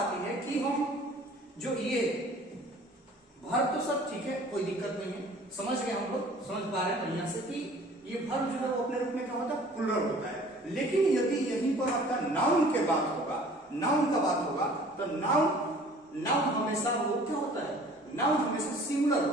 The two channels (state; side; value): normal; both; correlation 0.50